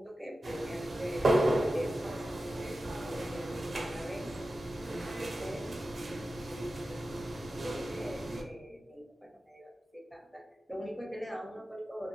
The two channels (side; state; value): both; normal; correlation 0.93